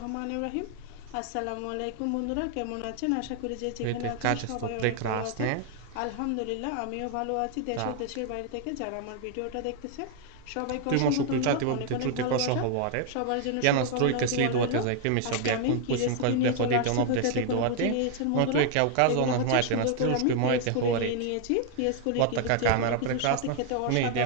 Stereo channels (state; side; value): different; both; correlation 0.00